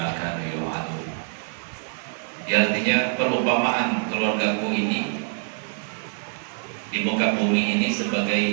kanu yu'adun." Artinya perumpamaan keluargaku ini di muka bumi ini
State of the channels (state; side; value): silent; left; 56 dB below the other